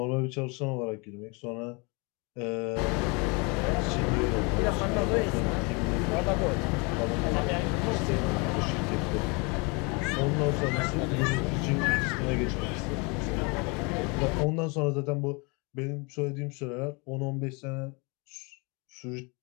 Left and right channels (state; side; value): quieter; right; 30.3 dB